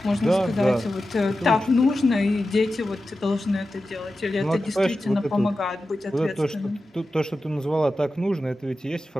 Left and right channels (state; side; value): normal; both; correlation 0.93